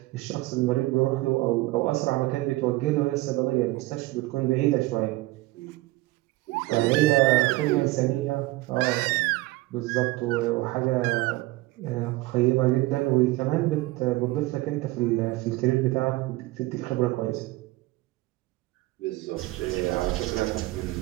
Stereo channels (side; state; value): left; quieter; 19.8 dB